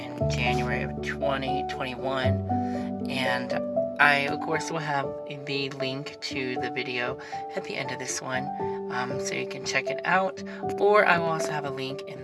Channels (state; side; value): identical; both; correlation 1.00